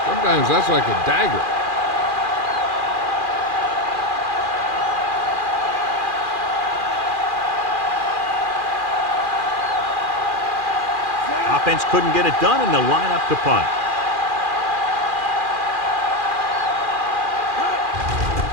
sometimes that's like a dagger. Offense couldn't get it done, and they'll line up to punt.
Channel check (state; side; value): late; left; 2.4 ms